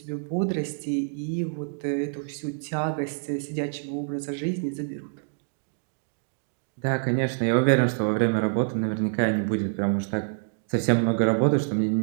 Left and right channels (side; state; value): left; silent; digital silence